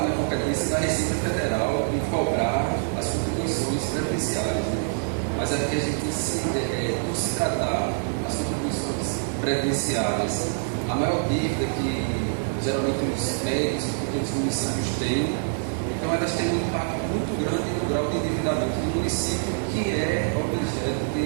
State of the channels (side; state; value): left; silent; digital silence